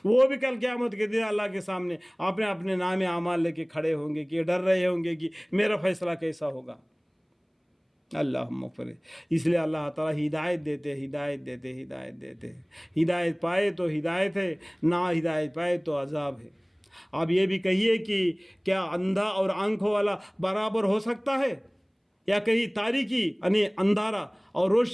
وہ بھی کل قیامت کے دن اللہ کے سامنے اپنے نام اعمال لے کے کھڑے ہوں گے کہ ڈر رہے ہوں گے کہ میرا فیصلہ کیسا ہوگا. اللہ مغفر. اس لیے اللہ تعالیٰ ہدایت دیتے, ہدایت پائے تو ہدایت ہے, نہ ہدایت پائے تو عذاب ہے. آپ یہ بھی کہیے کہ کیا اندھا اور آنکھوں والا برابر ہو سکتا ہے؟ یا کہیں تاریکی یعنی اندھارا اور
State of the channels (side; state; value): both; identical; correlation 1.00